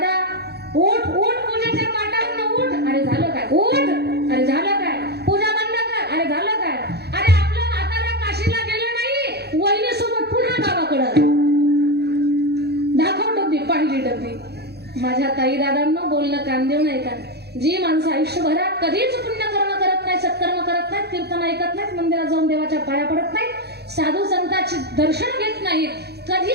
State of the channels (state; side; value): late; left; 0.48 ms